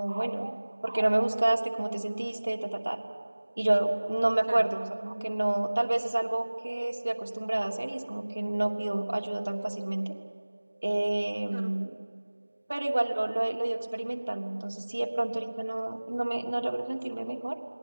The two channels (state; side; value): inverted; both; correlation -1.00